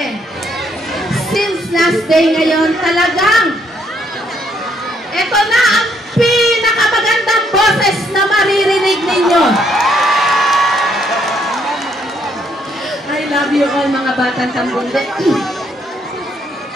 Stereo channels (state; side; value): normal; both; correlation 0.70